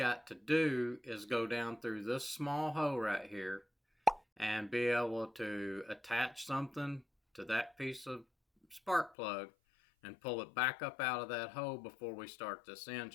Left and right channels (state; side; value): drops out; right; at 9.2 s